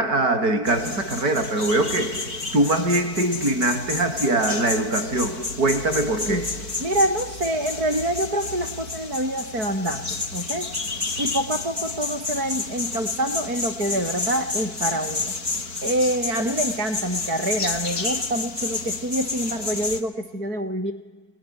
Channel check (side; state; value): left; late; 4.5 ms